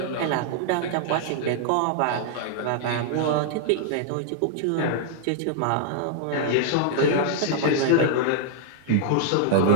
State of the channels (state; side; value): different; both; correlation -0.01